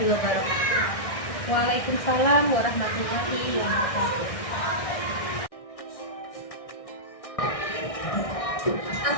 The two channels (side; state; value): right; late; 1.6 ms